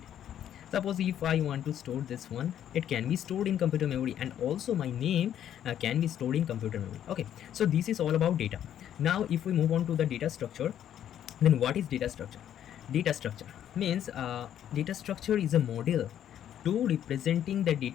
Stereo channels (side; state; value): right; quieter; 10.4 dB